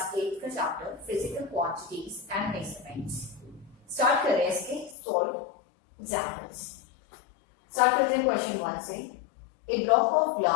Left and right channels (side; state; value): right; drops out; at 5.0 s